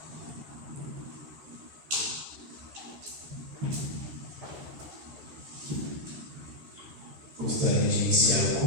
Gostaria de iniciar o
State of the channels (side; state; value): left; late; 13 ms